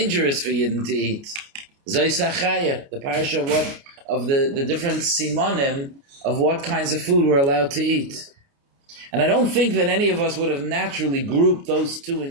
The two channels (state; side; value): late; left; 29 ms